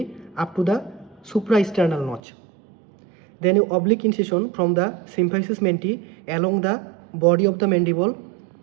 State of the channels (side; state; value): left; drops out; at 2.2 s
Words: up to the supraesternal notch. Then an oblique incision from the symphysis menti along the body of the mandible.